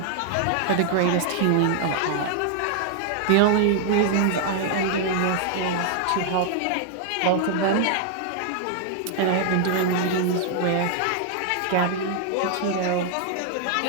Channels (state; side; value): different; both; correlation 0.00